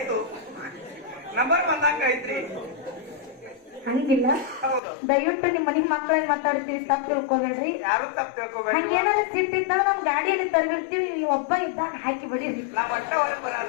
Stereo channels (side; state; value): right; drops out; at 4.8 s